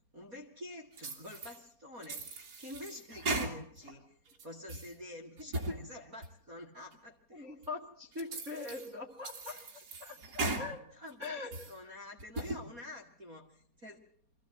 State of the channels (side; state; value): left; late; 4.3 ms